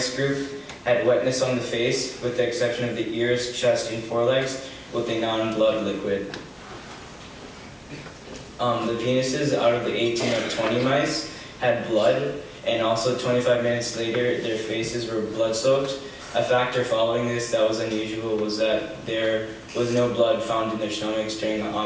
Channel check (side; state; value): both; identical; correlation 1.00